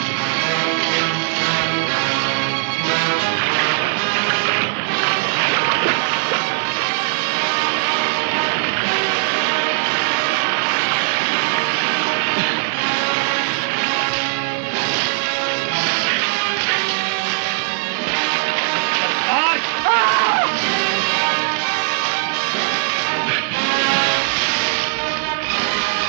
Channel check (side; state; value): left; silent; digital silence